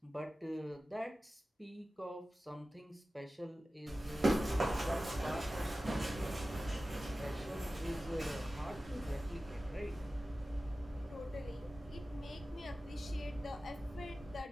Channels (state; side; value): normal; both; correlation 0.95